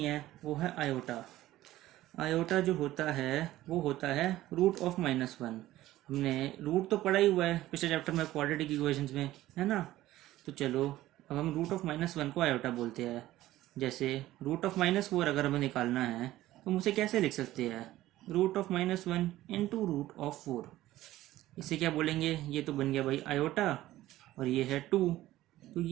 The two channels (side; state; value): left; quieter; 15.4 dB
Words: है वो है आयोटा। आयोटा जो होता है वो होता है रूट ऑफ -1। हमने रूट तो पढ़ा ही हुआ है पिछले चैप्टर में, क्वाड्रेटिक इक्वेशंस में, है ना। तो चलो अब हम रूट ऑफ -1 को आयोटा बोलते हैं। जैसे रूट ऑफ -4 अगर हमें निकालना है तो हम उसे कैसे लिख सकते हैं? Root of -1 into root of 4। इसे क्या बोलेंगे? ये तो बन गया भाई आयोटा, और ये है 2, तो